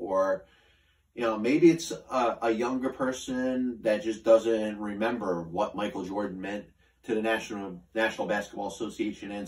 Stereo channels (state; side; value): identical; both; correlation 1.00